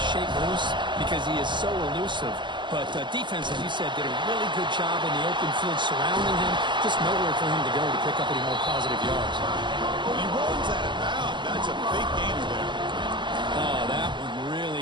shake loose because he is so elusive. But defense, as you said, did a really good job in the open field surrounding him. Just nowhere for him to go to pick up any more positive yards. He rolls out of bounds. That's a big gainer there. Oh, that one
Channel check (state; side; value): late; left; 0.23 ms